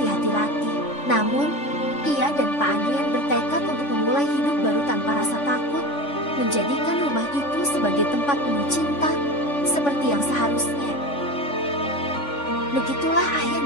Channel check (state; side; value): late; right; 3.5 ms